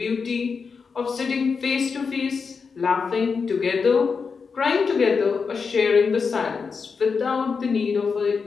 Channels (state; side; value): quieter; right; 5.3 dB